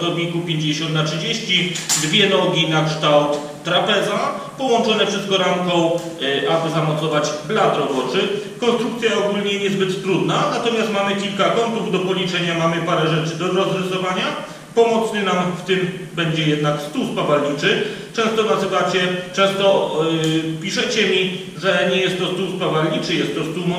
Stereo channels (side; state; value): both; identical; correlation 1.00